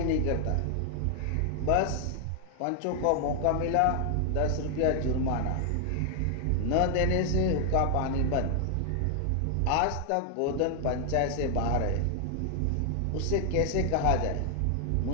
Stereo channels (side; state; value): both; different; correlation 0.00